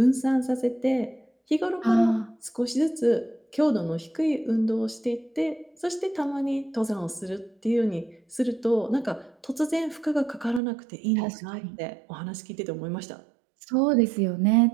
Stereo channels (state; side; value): drops out; left; at 10.6 s